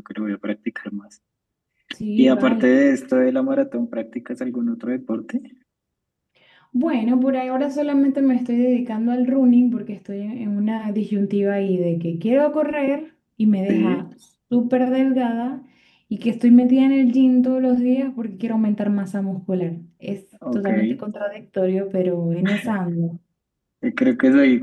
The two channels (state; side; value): identical; both; correlation 1.00